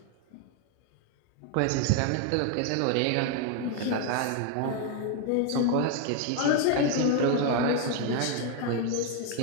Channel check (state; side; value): different; both; correlation 0.01